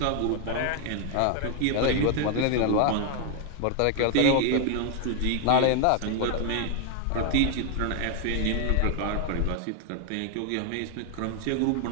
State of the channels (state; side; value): different; both; correlation 0.00